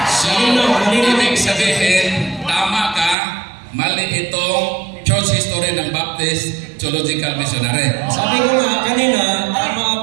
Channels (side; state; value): left; drops out; at 3.2 s